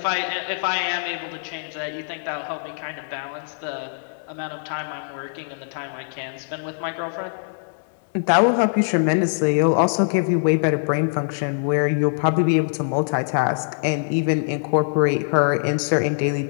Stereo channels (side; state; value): right; silent; digital silence